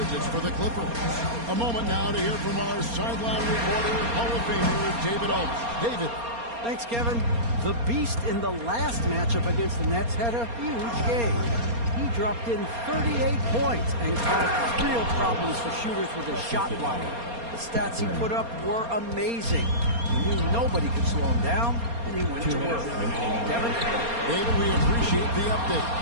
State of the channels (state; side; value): late; left; 4.3 ms